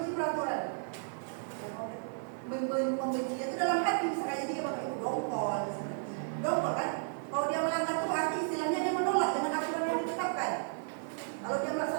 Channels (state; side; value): silent; left; 55 dB below the other